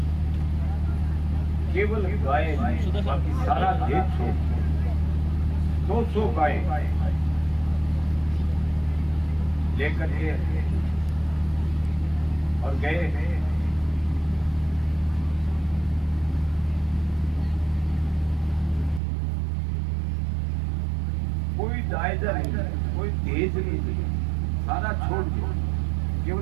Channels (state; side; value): drops out; left; at 19.0 s